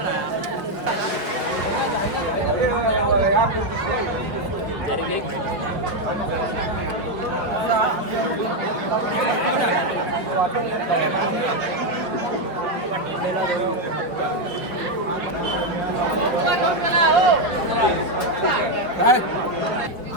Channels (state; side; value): late; left; 5.0 ms